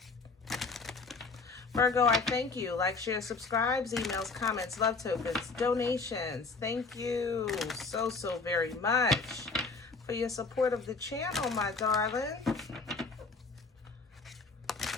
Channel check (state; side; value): quieter; right; 4.2 dB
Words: Virgo, I thank you. Like, share, subscribes, emails, comments, love tokens, donations. Thank you so very much for your support of the channel, my darling.